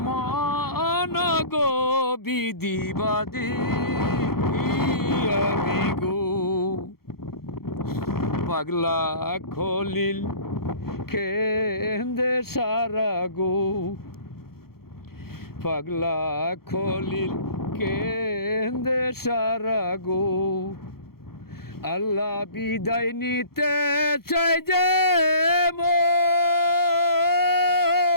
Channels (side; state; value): right; late; 0.94 ms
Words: মন গো বিধিবাদী আমি গো পাগলা খলিল কেন্দে সারা গো পাগলা খলিল কেন্দে সারা গো আল্লাহ বিদায় নিতে চাই যে মন